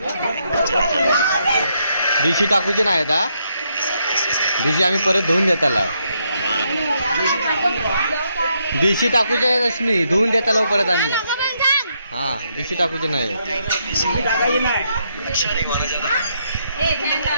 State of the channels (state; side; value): inverted; both; correlation -0.77